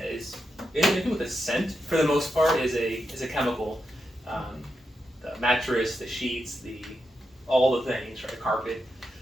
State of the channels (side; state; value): both; normal; correlation 0.86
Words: is, anything with a scent for the most part is a chemical. The mattress, the sheets, all the things, right, carpet.